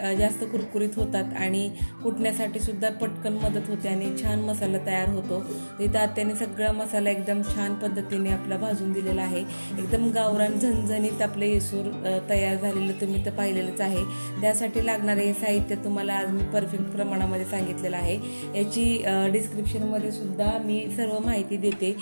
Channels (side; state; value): both; inverted; correlation -1.00